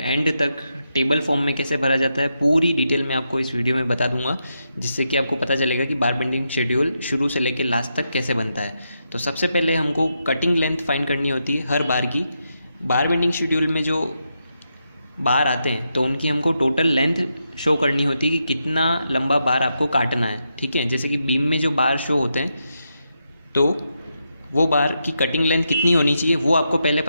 तक टेबल फॉर्म में कैसे भरा जाता है पूरी डिटेल में आपको इस वीडियो में बता दूंगा, जिससे कि आपको पता चलेगा कि बार बेंडिंग शेड्यूल शुरू से लेकर लास्ट तक कैसे बनता है। तो सबसे पहले हमको कटिंग लेंथ फाइंड करनी होती है हर बार की। बार बेंडिंग शेड्यूल में जो बार आते हैं तो उनकी हमको टोटल लेंथ शो करनी होती है कि कितना लंबा बार आपको काटना है। ठीक है, जैसे कि बीम में जो बार शो होते हैं तो वो बार की कटिंग लेंथ कितनी होनी चाहिए वो आपको पहले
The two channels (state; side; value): inverted; both; correlation -0.84